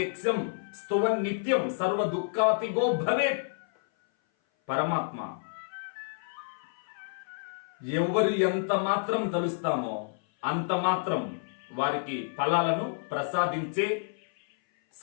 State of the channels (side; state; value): right; silent; 57 dB below the other